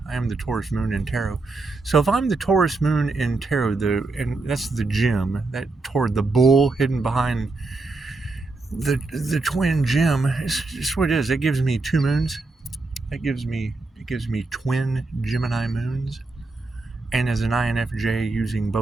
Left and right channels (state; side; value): quieter; left; 3.4 dB